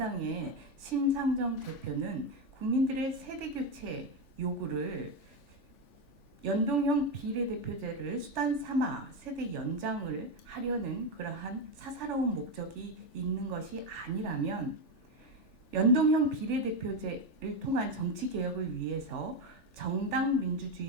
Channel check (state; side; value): late; right; 3.4 ms